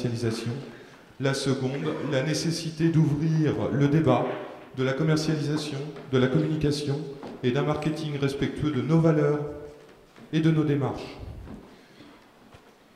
La seconde, la nécessité d'ouvrir le débat de la commercialisation, de la communication et d'un marketing respectueux de nos valeurs et de nos démarches.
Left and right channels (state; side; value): identical; both; correlation 1.00